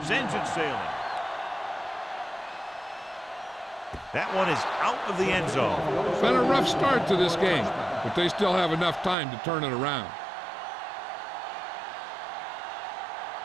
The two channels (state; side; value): drops out; left; at 9.2 s